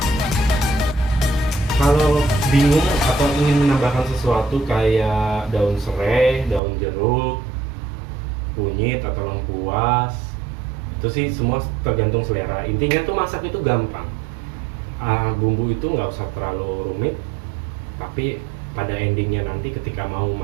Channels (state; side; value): drops out; left; at 6.6 s